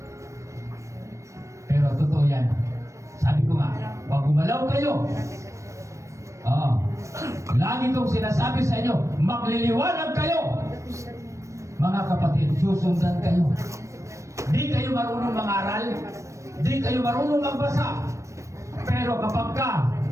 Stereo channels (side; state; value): left; late; 0.15 ms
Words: Pero totoo yan. Sabi ko nga, pag gumalaw kayo, lagi kong sinasabi sa inyo, magliliwanag kayo. Mga kapatid, susundan kayo. Di kayo marunong mangaral, di kayo marunong magbasa. Pero kapag ka